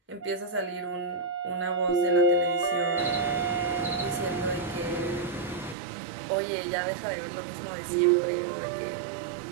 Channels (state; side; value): drops out; left; at 5.8 s